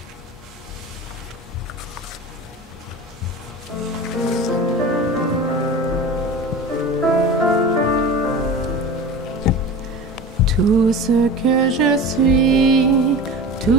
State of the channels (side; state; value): both; normal; correlation 0.33